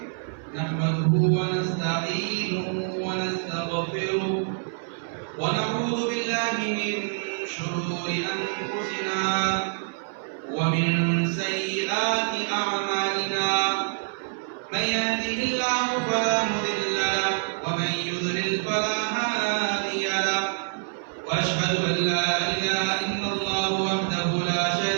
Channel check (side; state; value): left; silent; 61 dB below the other